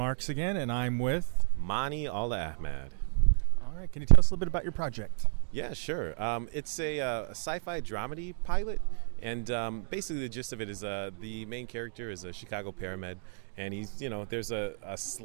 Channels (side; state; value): left; silent; digital silence